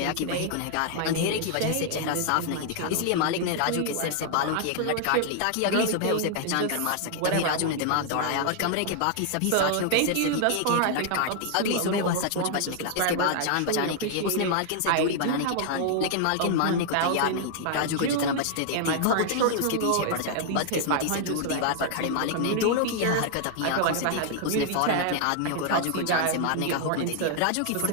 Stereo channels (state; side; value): different; both; correlation 0.00